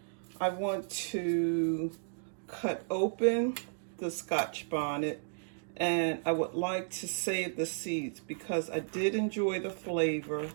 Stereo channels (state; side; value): silent; left; digital silence